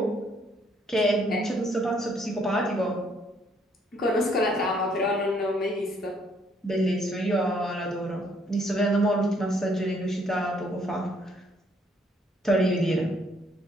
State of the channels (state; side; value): normal; both; correlation 0.67